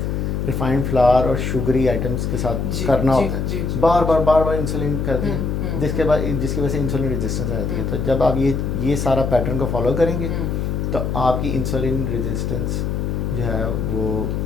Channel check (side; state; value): left; noise; hum, 1 dB below the sound